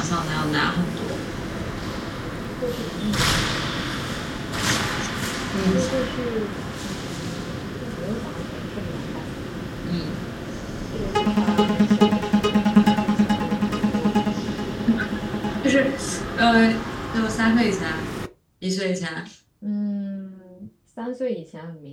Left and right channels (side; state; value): both; identical; correlation 1.00